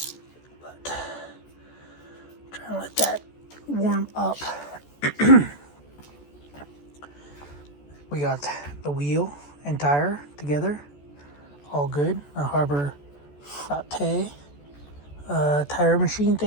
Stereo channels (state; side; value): late; right; 14 ms